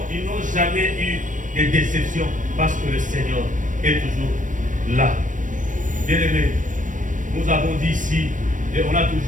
jamais eu de déception parce que le Seigneur est toujours là. Bien-aimés, nous avons dit ici, et on a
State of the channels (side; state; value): left; late; 0.37 ms